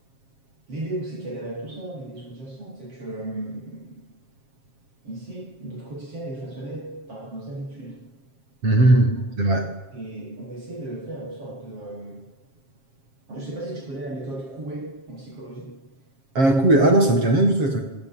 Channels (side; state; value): left; late; 7.4 ms